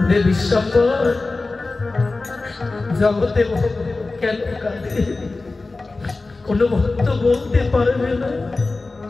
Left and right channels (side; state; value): right; quieter; 3.5 dB